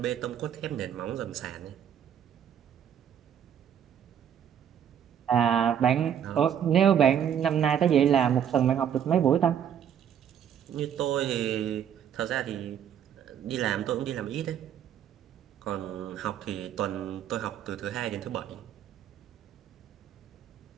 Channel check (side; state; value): left; quieter; 9.1 dB